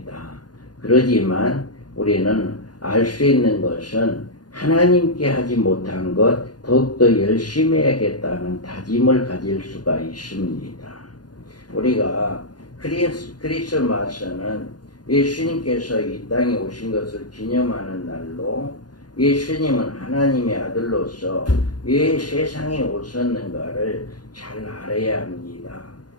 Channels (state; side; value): late; right; 0.70 ms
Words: 그러지만 우리는 알 수 있는 것은 하나님께 하지 못한 것 더욱더 열심히 해야겠다는 다짐을 가질 수가 있습니다. 우리가 크리스마스는 예수님께서 이 땅에 오신 것을 기념하는 날로, 예수님은 하나님의 아들로서 왜 세상에 오셨는가를 잘 알아야 합니다.